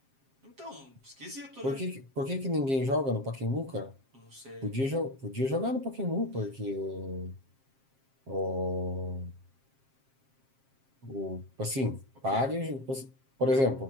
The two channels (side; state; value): left; late; 7.5 ms